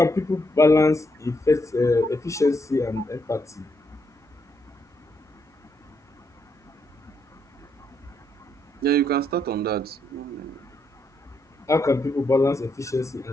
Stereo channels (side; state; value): both; normal; correlation 0.77